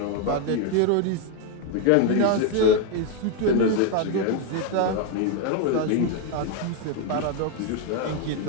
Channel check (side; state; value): both; different; correlation 0.01